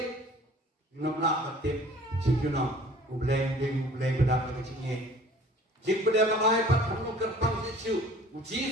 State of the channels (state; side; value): normal; both; correlation 0.49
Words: nama tiap Cikuna, ubleng bedak dengan cingin. Jik pada makai pat kamu kerpang sesu.